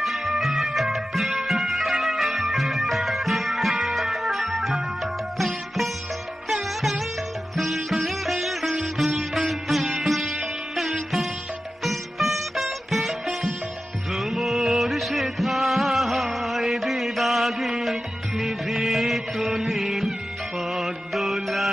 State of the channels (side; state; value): both; normal; correlation 0.94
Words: নিভৃত নীল পদ্ম